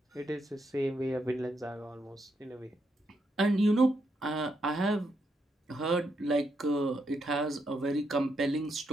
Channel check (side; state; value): both; normal; correlation 0.80